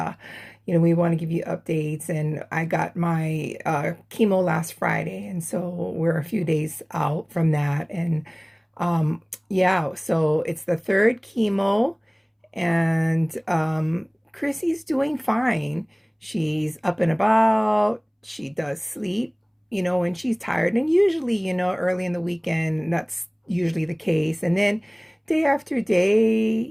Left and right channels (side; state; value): both; identical; correlation 1.00